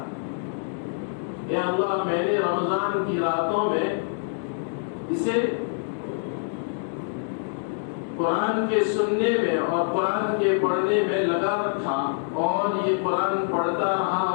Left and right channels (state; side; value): silent; right; digital silence